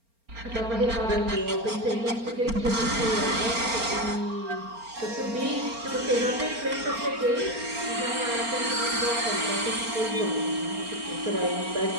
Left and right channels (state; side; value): late; left; 4.3 ms